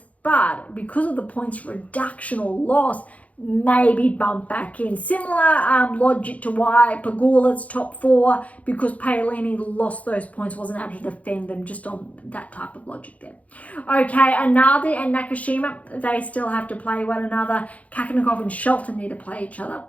but because of the points reduction or loss, maybe bump back in. Similar logic to why Pegula's top 4, because Paolini lost those points, wasn't able to defend them, just on that type of logic there. Okay, Analdi and Nakashima, they still have to play one another. Kakanakov and Shelton need to play each other.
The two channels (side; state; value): right; late; 0.068 ms